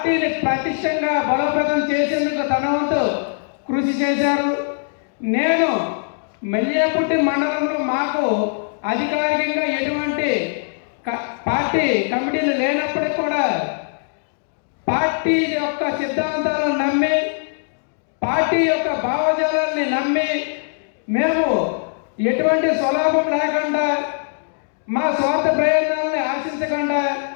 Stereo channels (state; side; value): silent; right; digital silence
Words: ప్రతిష్టంగా బలోపేతం చేసేందుకు తన వంతు కృషి చేశారు. నేను మెల్లియాపుట్టి మండలంలో మాకు అధికారికంగా ఎటువంటి పార్టీ కమిటీలు లేనప్పటికీ కూడా పార్టీ యొక్క సిద్ధాంతాలను నమ్మి, పార్టీ యొక్క భావజాలాన్ని నమ్మి, మేము ఎటువంటి స్వలాభం లేకుండా, మా స్వార్థ ప్రయోజనాలని ఆశించకుండా,